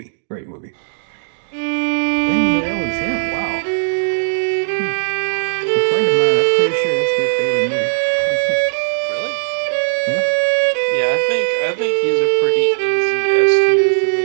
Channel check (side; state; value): left; silent; digital silence